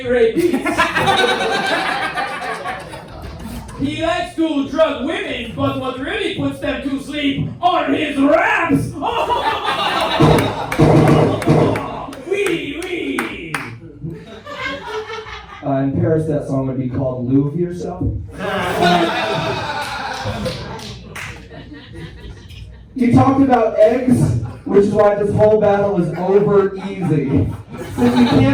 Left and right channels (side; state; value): both; identical; correlation 1.00